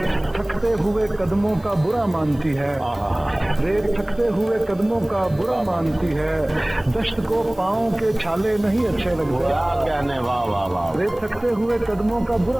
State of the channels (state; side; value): noise; right; hiss, 28 dB below the sound